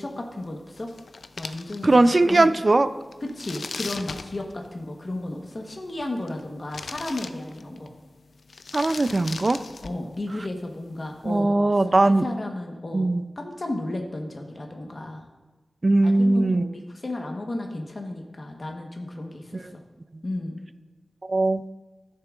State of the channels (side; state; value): both; normal; correlation 0.98